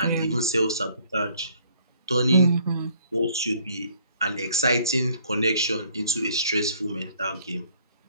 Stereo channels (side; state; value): both; inverted; correlation -0.62